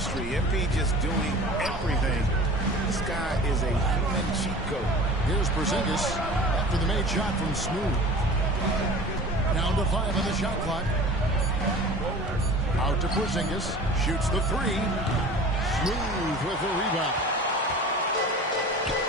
MP just doing everything. This guy is a human cheat code. Here's Porzingis after the made shot from Smooth. Down to 5 on the shot clock. Out to Porzingis. Shoots the 3. Smooth with the rebound.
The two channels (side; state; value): both; normal; correlation 0.39